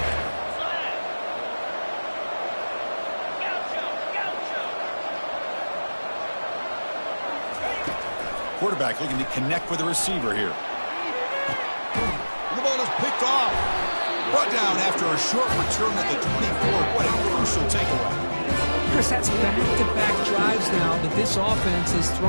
Quarterback looking to connect with the receiver here. The ball is picked off. Brought down after a short return at the 24. What a crucial takeaway. Chris, that's back-to-back drives now that this offense has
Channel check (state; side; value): inverted; both; correlation -1.00